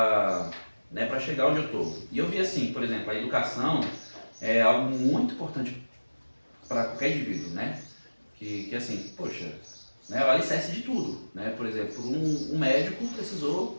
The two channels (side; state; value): both; inverted; correlation -1.00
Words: chegar onde eu tô. E eu vi assim, por exemplo, a educação é algo muito importante para qualquer indivíduo, né? Que assim, poxa, né, é o alicerce de tudo, né? Por exemplo, um médico precisou